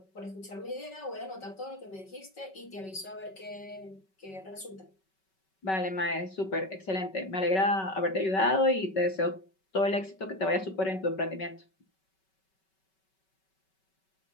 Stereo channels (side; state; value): right; late; 5.3 ms